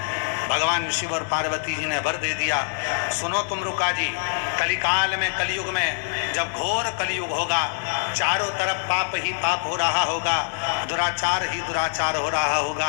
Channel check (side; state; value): right; silent; 62 dB below the other